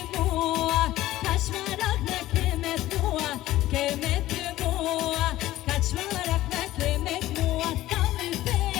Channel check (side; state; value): right; quieter; 15.5 dB